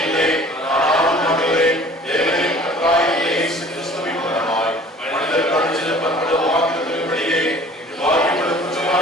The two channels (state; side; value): normal; both; correlation 0.48